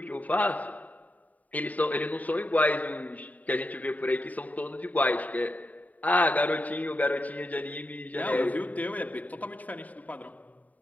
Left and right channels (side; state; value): right; late; 0.073 ms